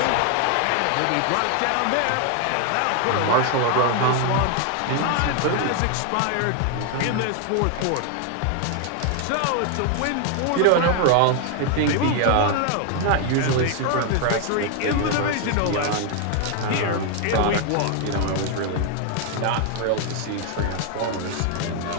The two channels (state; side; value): different; both; correlation 0.00